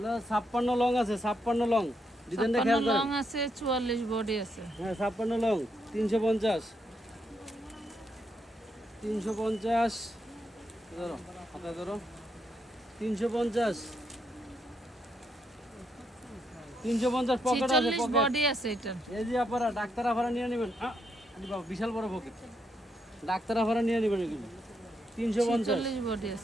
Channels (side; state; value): both; normal; correlation 0.78